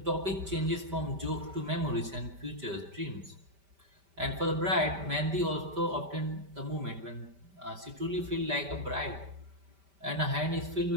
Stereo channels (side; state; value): left; late; 5.1 ms